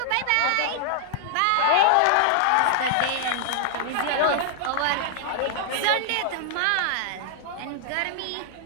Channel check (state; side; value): different; both; correlation -0.01